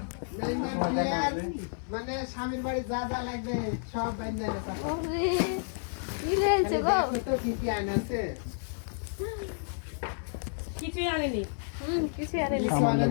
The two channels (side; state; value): right; silent; 57 dB below the other